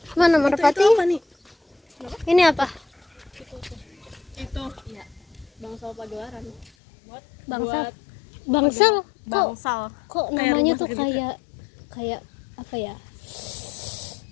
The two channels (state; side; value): drops out; right; at 6.7 s